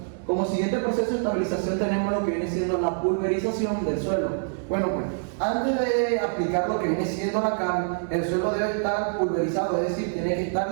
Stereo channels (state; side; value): silent; left; digital silence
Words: como siguiente proceso de estabilización tenemos lo que viene siendo la pulverización del suelo. Bueno, pues antes de aplicar lo que viene siendo la cal, el suelo debe estar pulverizado, es decir, tiene que estar